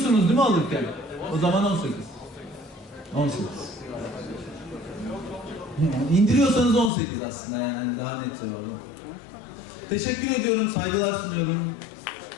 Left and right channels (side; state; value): right; drops out; at 6.9 s